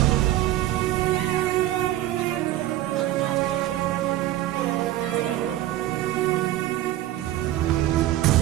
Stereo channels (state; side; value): quieter; left; 14.4 dB